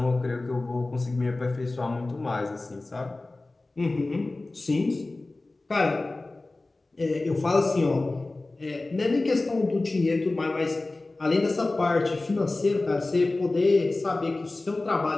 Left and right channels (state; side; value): quieter; right; 3.1 dB